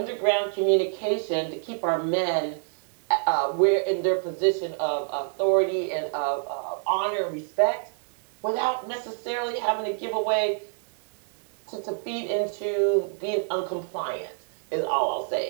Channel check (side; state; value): left; silent; 60 dB below the other